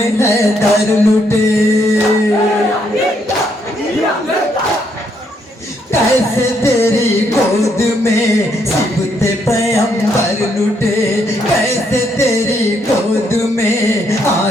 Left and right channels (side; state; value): both; normal; correlation 0.74